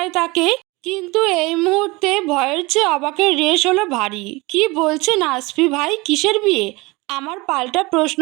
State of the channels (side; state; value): left; quieter; 23.7 dB